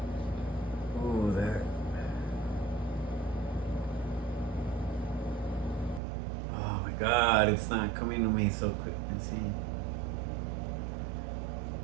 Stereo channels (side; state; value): left; drops out; at 6.0 s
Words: Ooh, that. Oh my God! It's not coming to me so quick. Let's see.